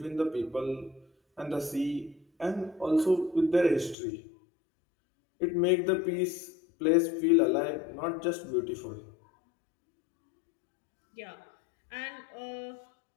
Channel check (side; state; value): right; drops out; at 4.0 s